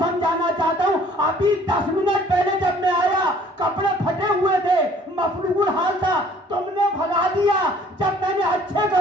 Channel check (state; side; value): normal; both; correlation 0.56